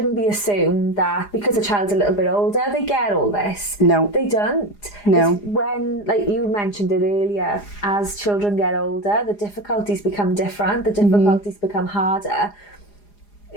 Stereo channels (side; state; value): right; late; 4.9 ms